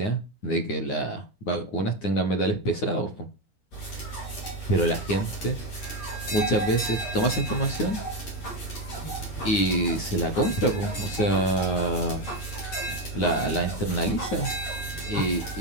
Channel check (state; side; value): late; right; 9.6 ms